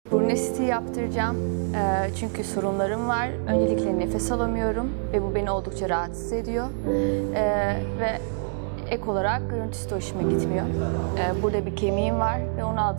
Burun estetiği yaptıracağım. Çünkü sorunlarım var. Öncelikle nefes alamıyorum ve bu beni oldukça rahatsız ediyor. Ve ek olarak görüntüsü de hoşuma gitmiyor. Burada bir kemiğim var ve onu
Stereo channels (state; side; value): silent; left; digital silence